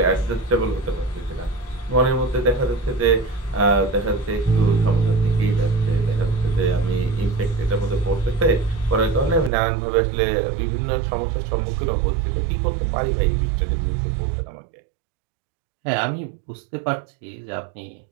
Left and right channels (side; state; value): left; drops out; at 9.5 s